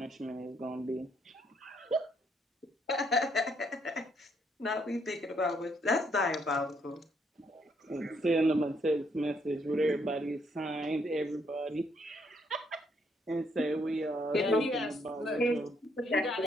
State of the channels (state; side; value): normal; both; correlation 0.72